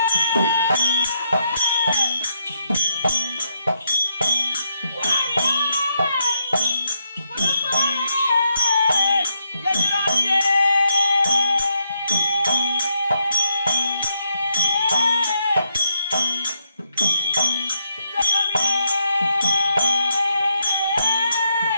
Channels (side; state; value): both; inverted; correlation -0.78